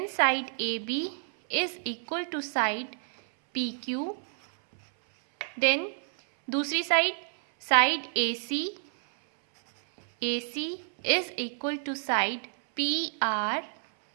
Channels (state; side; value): silent; left; 59 dB below the other